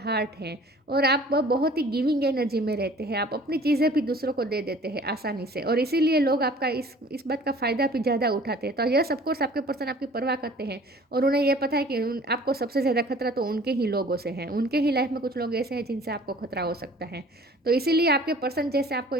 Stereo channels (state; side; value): normal; both; correlation 0.50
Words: हार्ट है, और आप बहुत ही गिविंग एनर्जी में रहते हैं। आप अपनी चीज़ें भी दूसरों को दे देते हैं आसानी से, और इसीलिए लोग आपका इस बात का फ़ायदा भी ज़्यादा उठाते हैं। तो यह सब कोर्स आपके पर्सन आपकी परवाह करते हैं, और उन्हें यह पता है कि आपको सबसे ज़्यादा खतरा तो उनके ही लोगों से है। उनके ही लाइफ में कुछ लोग ऐसे हैं जिनसे आपको खतरा हो सकता है। तो इसीलिए आपके पर्सन जैसे आपको